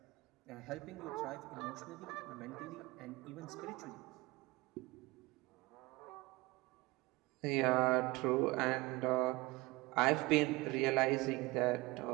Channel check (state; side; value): quieter; left; 22.0 dB